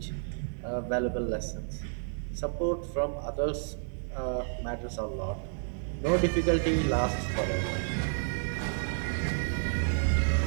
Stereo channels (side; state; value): left; silent; digital silence